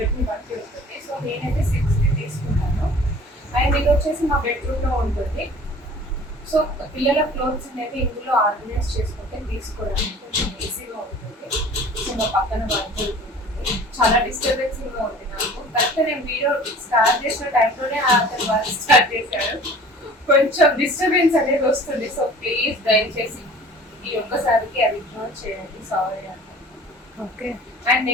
ని బట్టి ఉంటుంది. సో నేనైతే 6 తీసుకున్నాను. అండ్ ఇది వచ్చేసి మా బెడ్రూమ్ లో ఉంటుంది. సో పిల్లల క్లోత్స్ అనేది ఇందులో ఆర్గనైజ్ చేసుకుంటే తీసుకోవడానికి కొంచెం ఈజీగా ఉంటుంది. సో మా పక్కన వర్క్ ఉంటుంది, చాలా డిస్టర్బెన్సింగ్ గా ఉంది నాకు. కరెక్ట్ నేను వీడియో స్టార్ట్ చేసిన టైంలోనే అతను వర్క్ స్టార్ట్ చేశాడు. కొంచెం డిస్టర్బెన్స్ అనేది వస్తుంది. సో ప్లీజ్ దయచేసి ఈ ఒక్కసారికి అది ఇగ్నోర్ చేయండి, సారీ అంట. ఓకే. అండ్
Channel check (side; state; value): both; normal; correlation 0.46